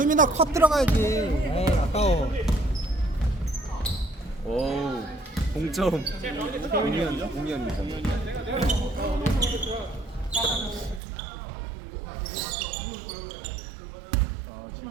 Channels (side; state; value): left; drops out; at 11.0 s